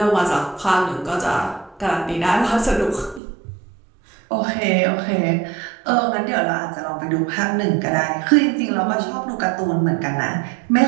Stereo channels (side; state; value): left; drops out; at 3.2 s